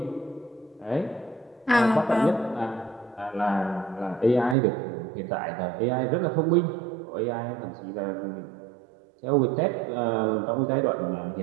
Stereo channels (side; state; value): left; drops out; at 4.5 s